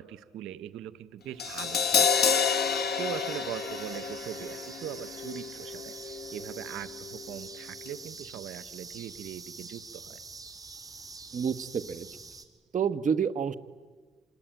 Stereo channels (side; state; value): both; normal; correlation 0.43